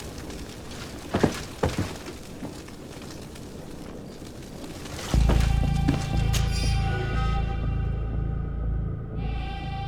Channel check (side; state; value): both; identical; correlation 1.00